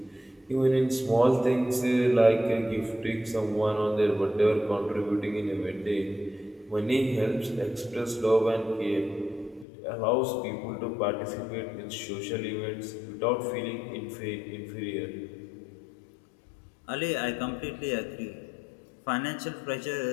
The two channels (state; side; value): drops out; right; at 9.7 s